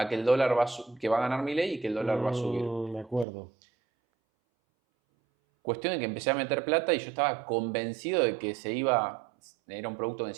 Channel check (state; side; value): drops out; left; at 3.2 s